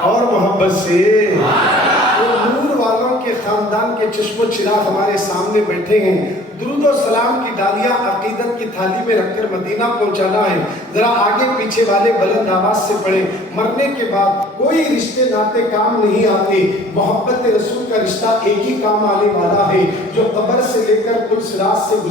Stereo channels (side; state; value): both; normal; correlation 0.50